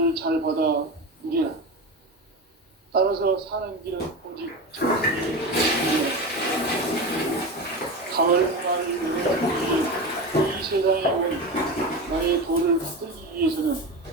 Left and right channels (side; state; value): both; normal; correlation 0.23